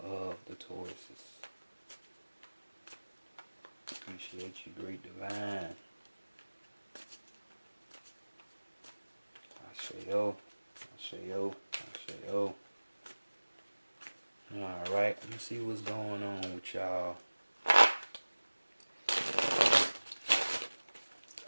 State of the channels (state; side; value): inverted; both; correlation -1.00